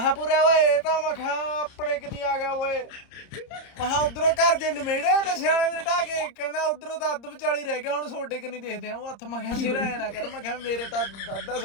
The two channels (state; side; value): late; right; 30 ms